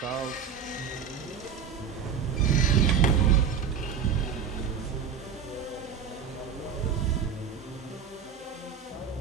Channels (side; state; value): left; quieter; 7.3 dB